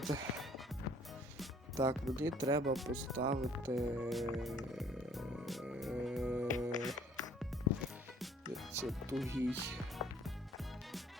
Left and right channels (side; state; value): both; normal; correlation 0.57